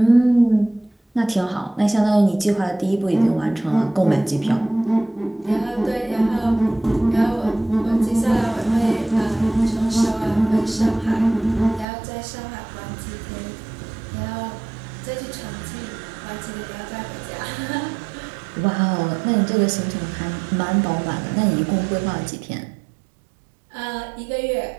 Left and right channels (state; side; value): drops out; left; at 11.9 s